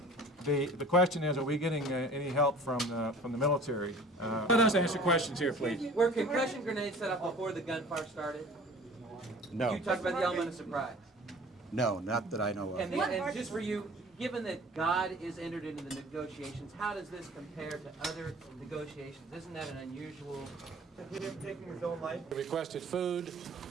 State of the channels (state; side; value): normal; both; correlation 0.46